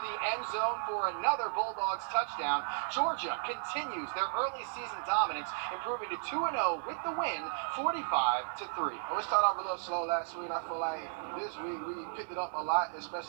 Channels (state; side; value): silent; left; digital silence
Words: the end zone for another Bulldogs touchdown. Georgia continues their early season dominance, improving to 2-0 with the win, 45-3. We started off a little slow last week. I feel like this week we picked it up a lot,